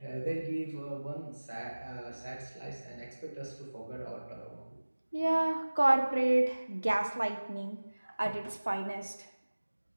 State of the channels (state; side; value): inverted; both; correlation -1.00